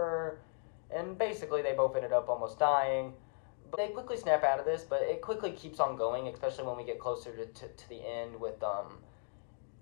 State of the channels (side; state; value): right; silent; 53 dB below the other